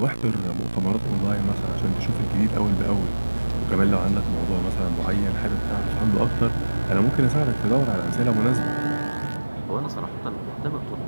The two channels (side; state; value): both; inverted; correlation -1.00